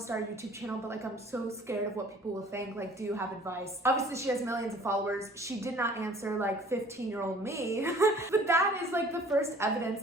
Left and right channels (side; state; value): both; normal; correlation 0.52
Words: start a YouTube channel, but like I'm so scared of what people will think. Like, do you have advice? Obviously she has millions of followers. She did not answer like 15-year-old me, but that is like the first